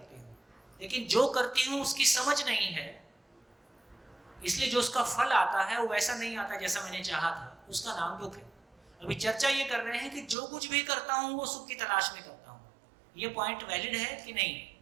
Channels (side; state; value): left; drops out; at 10.4 s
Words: हूँ, लेकिन जो करती हूँ उसकी समझ नहीं है, इसलिए जो उसका फल आता है वो वैसा नहीं आता जैसा मैंने चाहा था, उसका नाम दुख है। अभी चर्चा ये कर रहे हैं कि जो कुछ भी करता हूं वो सुख की तलाश में करता हूं। ये पॉइंट वैलिड है कि नहीं?